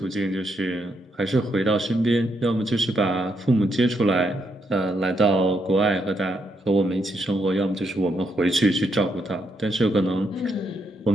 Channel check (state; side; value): normal; both; correlation 0.78